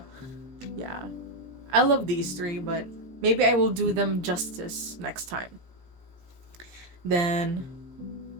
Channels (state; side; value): late; left; 17 ms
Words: Yeah, I love these three, but maybe I will do them justice next time. Then